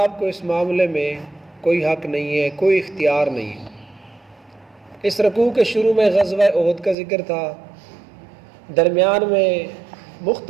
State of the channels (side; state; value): left; drops out; at 7.0 s